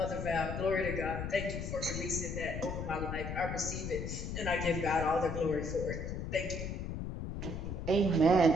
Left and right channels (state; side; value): noise; left; rumble, 5 dB below the sound